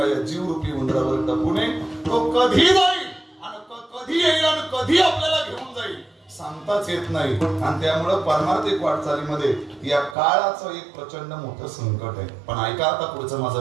जीव रूपी उंदरावर टपूने तो कधी जाईल आणि कधी येईल आणि कधी आपल्याला घेऊन जाईल सांगताच येत नाही. आणि त्यामुळे पारमार्थिक वाटचालीमध्ये या काळाचं एक प्रचंड मोठं संकट आहे. पण ऐका आता पुढचं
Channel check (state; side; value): drops out; left; at 10.2 s